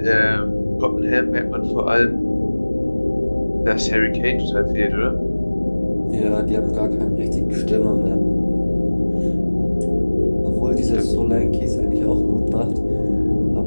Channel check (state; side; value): inverted; both; correlation -1.00